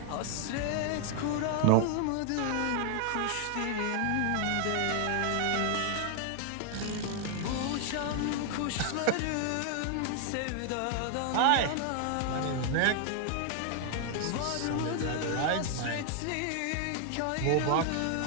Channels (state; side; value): different; both; correlation 0.00